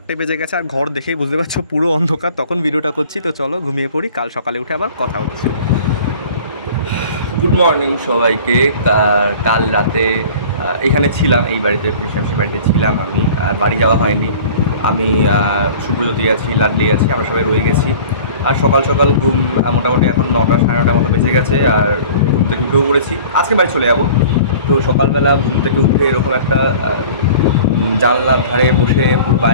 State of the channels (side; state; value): both; inverted; correlation -0.44